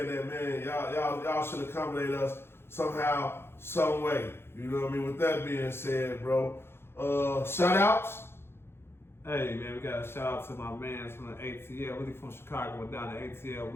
that, man, y'all should accommodate us somehow, some way. You know what I mean? With that being said, bro, shout outs. Hey, man, we got a shout out to my man from the ATL, really from Chicago, went down to ATL.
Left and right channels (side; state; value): right; late; 0.11 ms